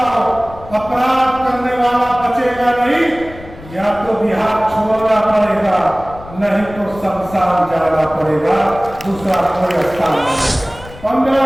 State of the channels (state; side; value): noise; left; rumble, 17 dB below the sound